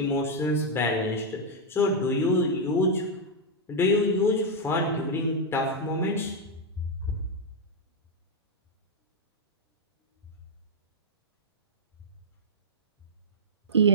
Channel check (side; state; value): both; normal; correlation -0.02